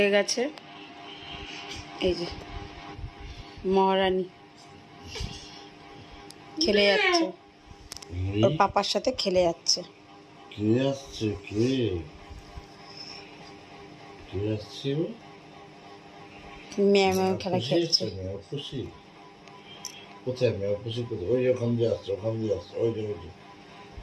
গেছে। এই যে মহারানী খেলে যাচ্ছে, ওর পাপার সাথে খেলে যাচ্ছে। কে আসছে? কে আসছে? ম্যাও ম্যাও খেলা খেলছে। খুশি কোথায়? ম্যাও খুশি কোথায়? ওই যে ওখান দিয়ে আসছে, ওখান দিয়ে আসছে, ওই যে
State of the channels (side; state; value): both; identical; correlation 1.00